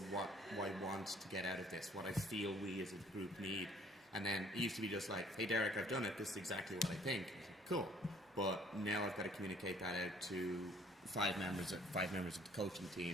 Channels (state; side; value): normal; both; correlation 0.58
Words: what I want to get out of this, what I feel we as a group need. And then it used to be just like, hey Derek, I've done it, this is exactly what I think. Cool. But now I've got to communicate that out to five members of the coaching